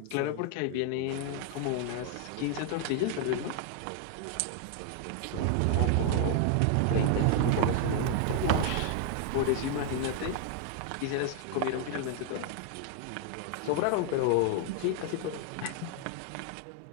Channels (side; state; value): both; different; correlation 0.00